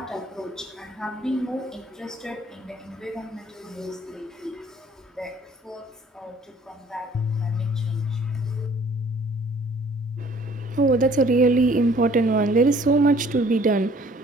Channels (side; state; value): both; normal; correlation 0.56